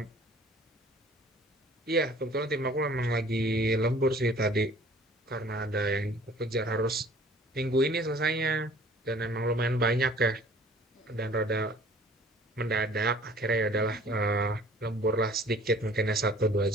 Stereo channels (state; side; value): normal; both; correlation 0.51